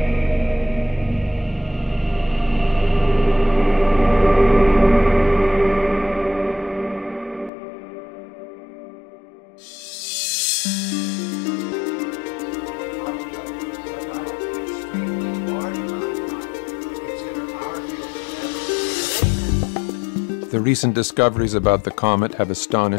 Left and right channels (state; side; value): drops out; right; at 7.5 s